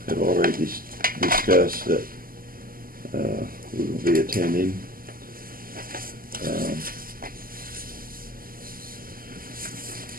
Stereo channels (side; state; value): left; late; 0.42 ms